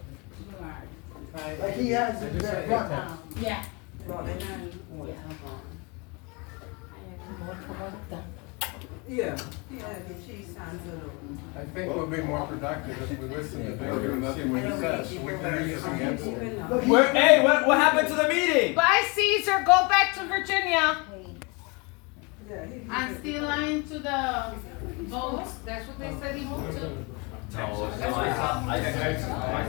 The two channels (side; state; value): right; quieter; 29.5 dB